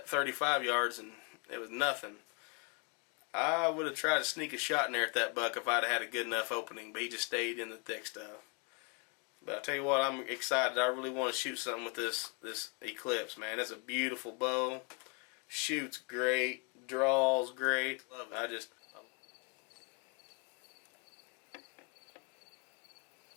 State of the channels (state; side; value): quieter; right; 33.0 dB